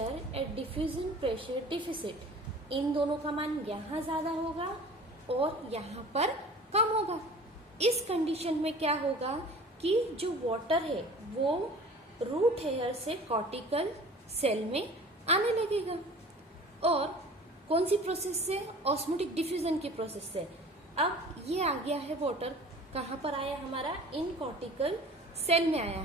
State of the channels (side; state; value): both; normal; correlation 0.43